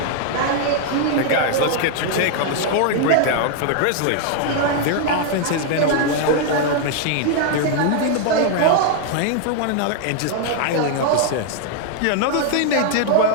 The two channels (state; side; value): different; both; correlation 0.00